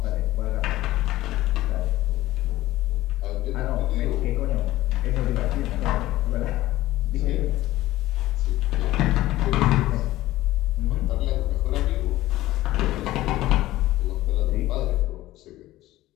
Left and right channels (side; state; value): right; quieter; 16.1 dB